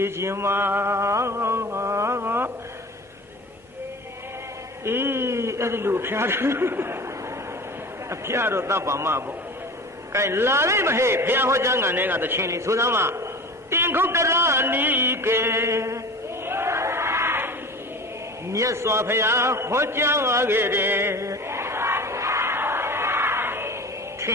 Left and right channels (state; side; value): normal; both; correlation 0.36